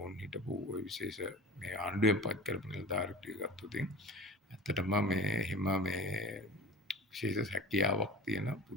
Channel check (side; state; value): both; normal; correlation 0.36